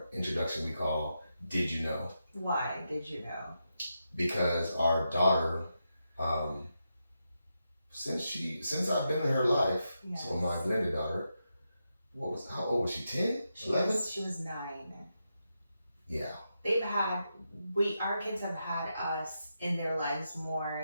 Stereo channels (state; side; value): inverted; both; correlation -0.86